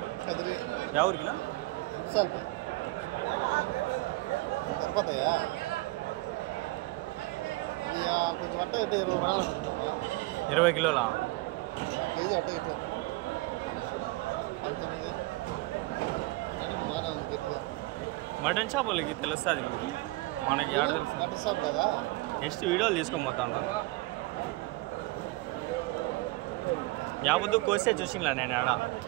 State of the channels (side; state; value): left; quieter; 21.6 dB